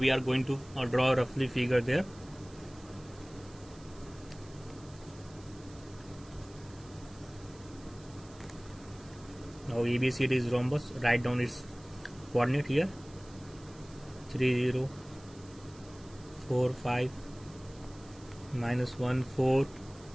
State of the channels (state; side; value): noise; right; hiss, 23 dB below the sound